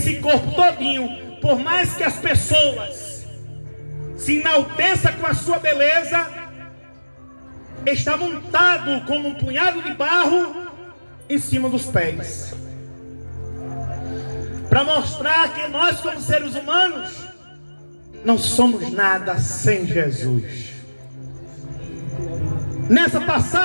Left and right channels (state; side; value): inverted; both; correlation -1.00